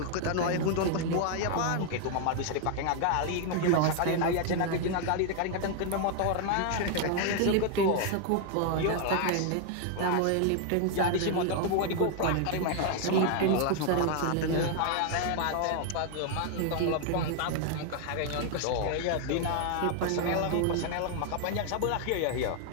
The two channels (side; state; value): both; different; correlation 0.00